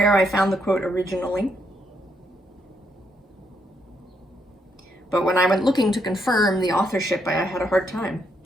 I found the quote originally. But when I went looking to confirm the authorship, I had a hard time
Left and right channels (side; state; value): both; normal; correlation 0.76